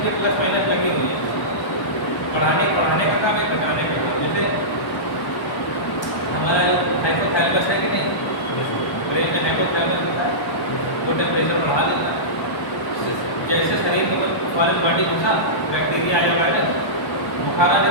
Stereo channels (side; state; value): right; late; 1.0 ms